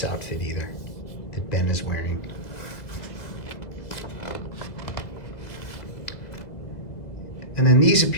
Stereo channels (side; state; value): right; late; 2.1 ms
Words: outfit either that Ben is wearing. And then these